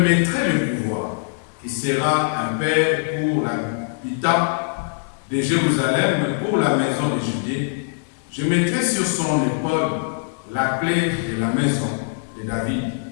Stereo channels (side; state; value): right; silent; digital silence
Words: le pouvoir. Il sera un père pour l'habitant de Jérusalem, pour la maison de Judée. Je mettrai sur son épaule la clé de la maison de David.